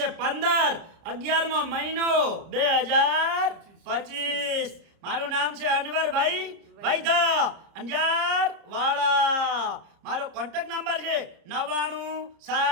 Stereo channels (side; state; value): left; late; 30 ms